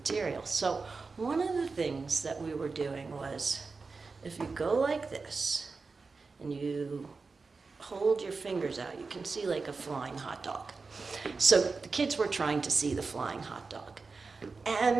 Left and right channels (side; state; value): left; quieter; 4.3 dB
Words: So one of the things that we were doing was, if you go like this and you hold your fingers out, you can see like a flying hot dog. So the kids were trying to see the flying hot dog.